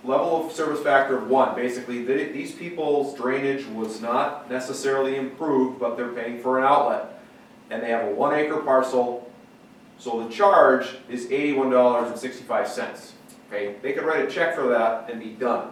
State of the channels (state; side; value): identical; both; correlation 1.00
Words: level of service factor of 1. Basically, these people's drainage was not necessarily improved, but they're paying for an outlet. And they have a 1 acre parcel, so the charge is $81.65. Okay, they could write a check for that and be done.